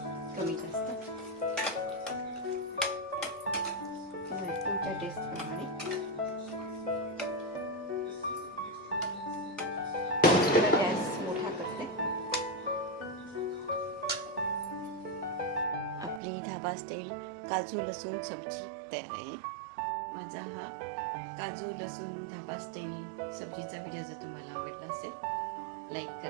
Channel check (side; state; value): left; drops out; at 16.2 s